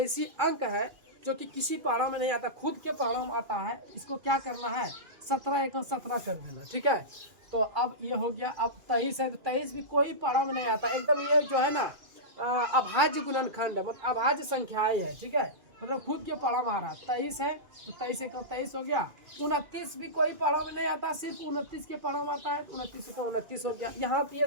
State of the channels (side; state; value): left; late; 2.5 ms